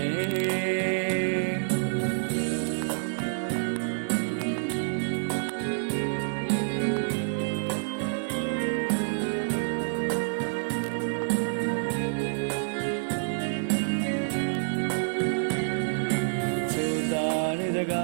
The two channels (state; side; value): silent; left; digital silence